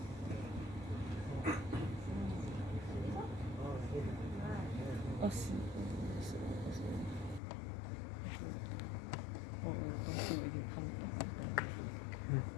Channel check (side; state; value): right; drops out; at 7.4 s